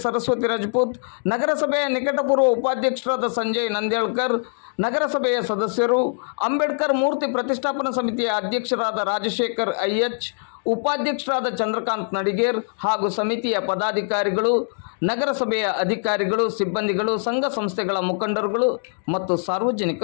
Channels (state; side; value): silent; right; digital silence